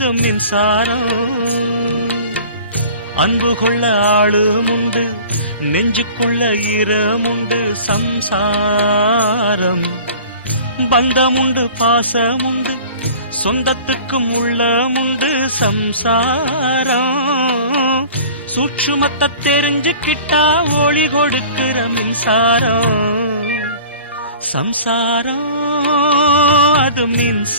மின்சாரம். அன்பு கொள்ள ஆளும் உண்டு, நெஞ்சுக்குள்ள ஈரமுண்டு. சம்சாரம் பந்தமுண்டு, பாசமுண்டு, சொந்தத்துக்கும் உள்ளமுண்டு. சம்சாரம் சூட்சுமத்தை தெரிஞ்சுக்கிட்டா ஒளி கொடுக்கிற மின்சாரம். சம்சாரம் அது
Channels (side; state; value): both; inverted; correlation -0.43